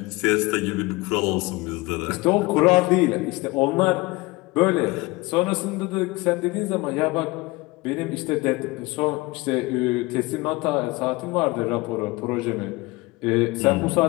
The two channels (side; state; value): right; quieter; 22.5 dB